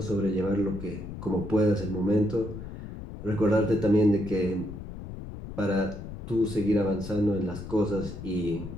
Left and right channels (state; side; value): noise; left; rumble, 10 dB below the sound